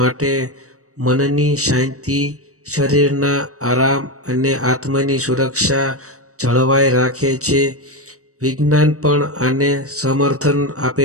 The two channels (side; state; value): left; late; 0.65 ms